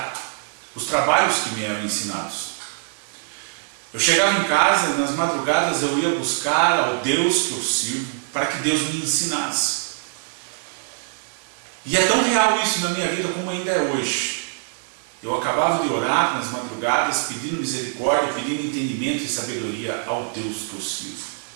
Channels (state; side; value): silent; left; digital silence